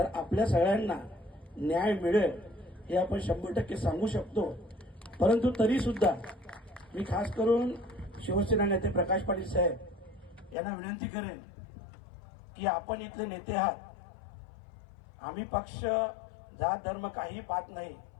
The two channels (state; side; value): drops out; right; at 10.6 s